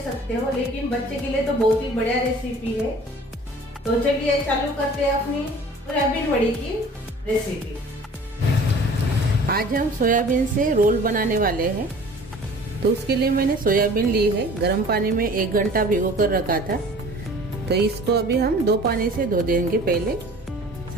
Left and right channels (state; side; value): normal; both; correlation 0.47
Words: सकते हो, लेकिन बच्चे के लिए तो बहुत ही बढ़िया रेसिपी है। तो चलिए चालू करते हैं अपनी सोयाबीन वड़ी की रेसिपी। आज हम सोयाबीन से रोल बनाने वाले हैं। तो उसके लिए मैंने सोयाबीन ली है, गर्म पानी में 1 घंटा भिगो कर रखा था। तो इसको अभी हम 2 पानी से धो देंगे। पहले